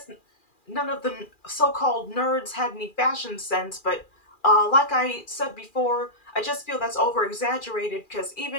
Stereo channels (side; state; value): right; late; 2.4 ms